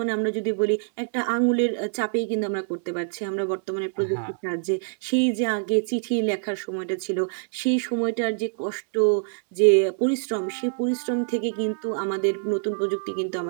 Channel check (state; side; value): silent; left; digital silence